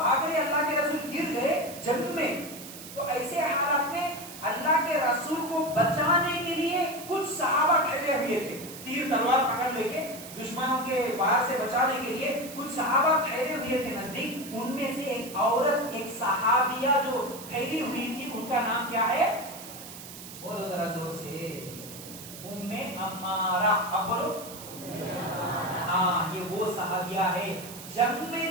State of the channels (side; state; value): right; noise; hiss, 13 dB below the sound